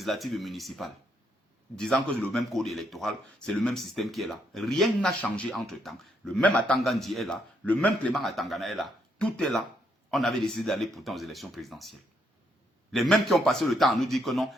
et municipales. Disant que c'est le même code électoral, c'est le même système qui est là. Rien n'a changé entre-temps. Le même Atangandi est là, le même Clément Atangana est là. Tout est là. On avait décidé d'aller pourtant aux élections présidentielles. Les mêmes qui ont passé le temps à nous dire que non,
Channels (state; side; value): normal; both; correlation 0.75